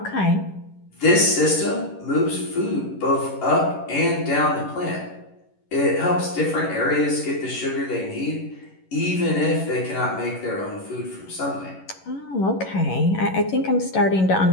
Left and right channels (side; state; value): right; late; 11 ms